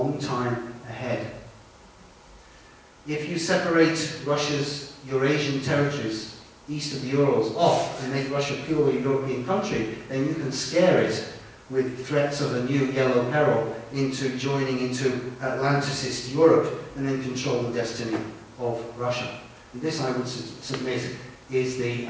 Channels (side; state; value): both; identical; correlation 1.00